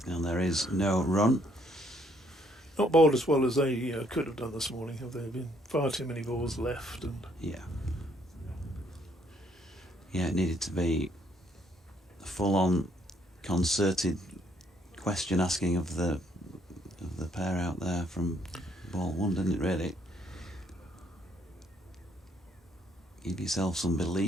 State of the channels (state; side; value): normal; both; correlation 0.68